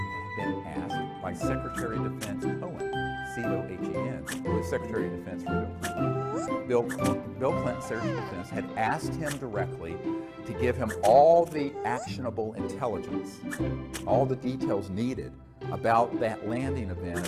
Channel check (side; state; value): both; identical; correlation 1.00